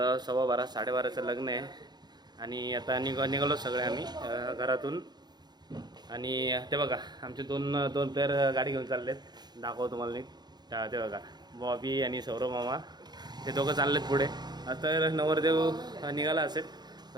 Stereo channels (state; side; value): late; left; 0.20 ms